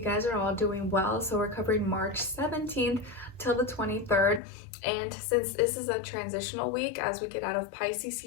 guys are all doing well. So we're covering March 17th till the 23rd. And since this is a transitional week as we get out of Pisces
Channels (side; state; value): right; drops out; at 4.4 s